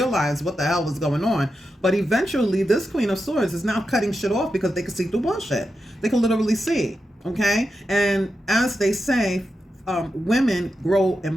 what the hell was going on. But eventually, this Queen of Swords is now cutting shit off because they can see through bullshit. They can literally see, okay? And as they say, women grow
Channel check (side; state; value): both; normal; correlation 0.88